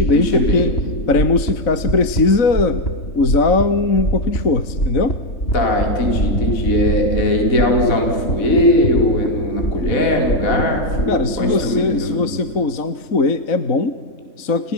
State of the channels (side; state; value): right; late; 3.9 ms